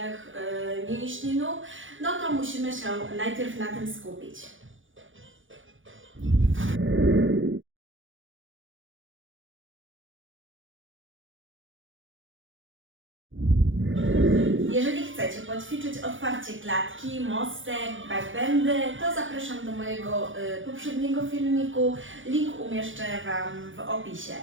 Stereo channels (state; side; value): late; left; 0.57 ms